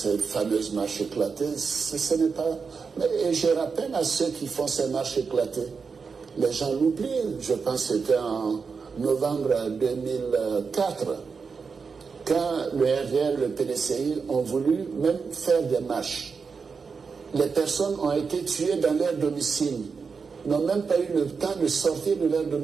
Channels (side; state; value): left; quieter; 5.3 dB